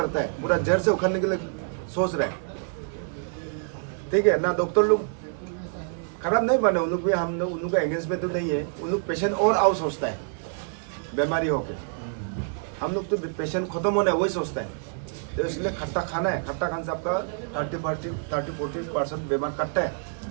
है, पूरा जड़ से उखड़ने के लिए सोच रहे हैं। ठीक है ना। डॉक्टर लोग खराब नहीं माने, उन लोग भी हम लोग उन लोग का एंगेजमेंट तो नहीं है। उन लोग पेशेंट और आओ सोचता है बीमारी होके। हम लोग तो पेशेंट खत्म होना है वही सोचता है। तो इसलिए खट्टा खाना है। खट्टा खाने से आपका 30-40% बीमार कटता है।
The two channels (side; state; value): left; silent; 60 dB below the other